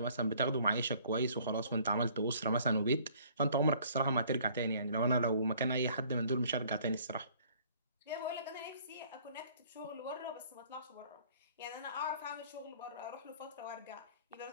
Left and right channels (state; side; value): inverted; both; correlation -0.57